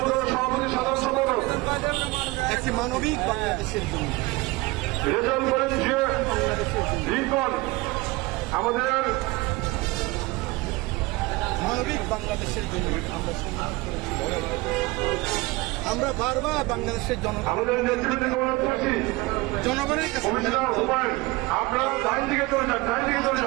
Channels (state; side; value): quieter; left; 22.4 dB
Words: সভাপতি সাধারণ সম্পাদক, একটি মানবিক বাংলাদেশের জন্য রেজাল্ট করেন যে লিঙ্কন, আমাদের মানবিক বাংলাদেশের জন্য আমরা সংগ্রাম করেছি। আমরা বারবার বাংলাদেশের আমাদের নেতৃত্বে অনুরোধ করছি, জনগণের কাছে কমিশনার হুমায়ুন, আপনারা ডাইন দিকে চলে যান, ডাইন দিকে চলে